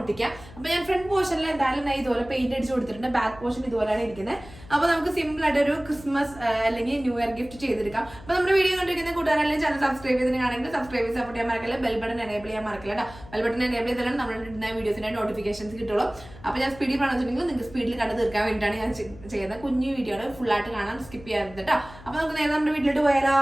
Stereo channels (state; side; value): noise; left; hum, 19 dB below the sound